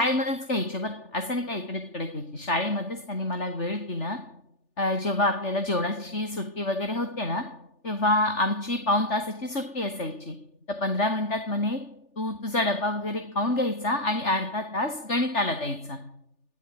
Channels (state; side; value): late; right; 3.4 ms